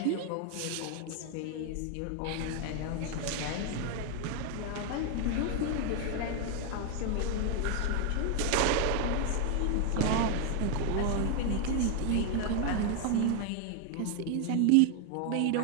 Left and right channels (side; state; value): both; different; correlation 0.01